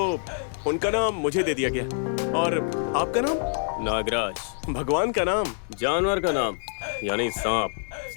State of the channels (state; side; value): silent; right; digital silence